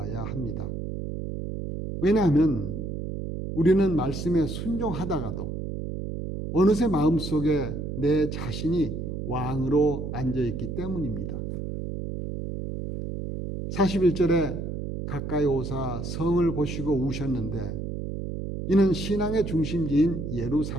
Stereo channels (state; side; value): noise; right; hum, 5 dB below the sound